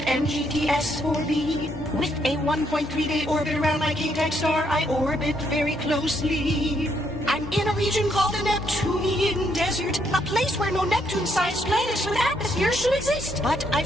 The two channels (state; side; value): normal; both; correlation 0.73